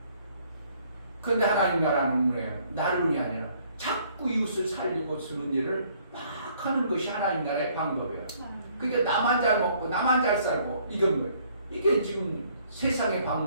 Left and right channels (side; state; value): both; inverted; correlation -0.63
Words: 그런데 하나님 나라는 뭐예요? 나름이 아니라 자꾸 이웃을 살리고 주는 일을 막 하는 것이 하나님 나라의 방법이에요. 그러니까 나만 잘 먹고 나만 잘 살고 이건 뭐예요? 이게 지금 세상의